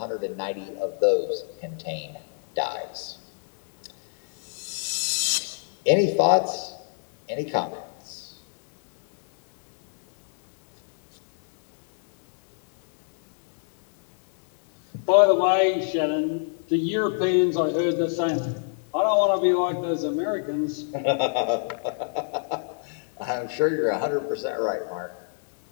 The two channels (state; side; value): silent; right; digital silence